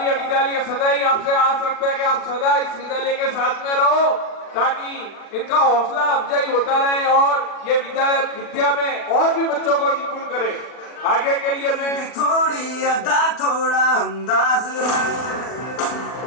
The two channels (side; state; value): right; late; 40 ms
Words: ये विद्यालय सदा ही आपसे आस रखता है कि आप सदा इस विद्यालय के साथ में रहो, ताकि इनका हौसला अफजाई होता रहे और ये विद्या में और भी बच्चों को निपुण करे। आगे के लिए मैं थोड़ी अदा थोड़ा अंदाज है,